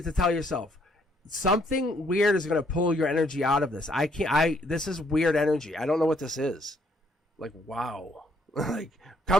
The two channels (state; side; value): normal; both; correlation 0.68